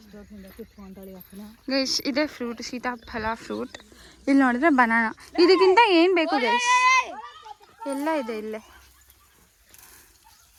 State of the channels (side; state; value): both; identical; correlation 1.00